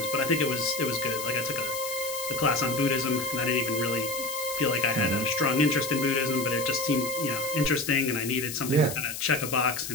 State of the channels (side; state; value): left; noise; hiss, 7 dB below the sound